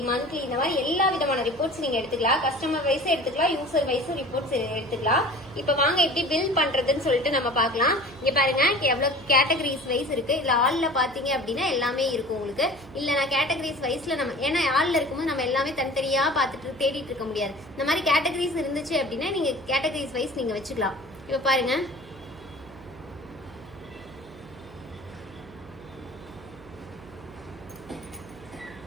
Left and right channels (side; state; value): right; noise; hum, 20 dB below the sound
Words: மந்த்லி இந்த மாதிரி எல்லா விதமான ரிப்போர்ட்ஸ் நீங்க எடுத்துக்கலாம். கஸ்டமர் வைஸ் எடுத்துக்கலாம், யூசர் வைஸ் ரிப்போர்ட்ஸ் எடுத்துக்கலாம். இப்ப வாங்க எப்படி பில் பண்றதுன்னு சொல்லிட்டு நம்ம பார்க்கலாம். இங்க பாருங்க எவ்வளவு கேட்டகரிஸ் வைஸ் இருக்கு. இதுல ஆள்ல பாத்தீங்க அப்படின்னா எல்லாமே இருக்கும் உங்களுக்கு. இல்ல நான் கேட்டகரிஸ் வைஸ்ல நம்ம ஏன்னா ஆள்ல இருக்கும்போது நம்ம எல்லாமே தனித்தனியா பார்த்துட்டு தேடிட்டு இருக்க முடியாது. இந்த மாதிரி கேட்டகரிஸ் இருந்துச்சு அப்படின்னா நீங்க கேட்டகரிஸ் வைஸ் நீங்க வச்சுக்கலாம். இப்ப பாருங்க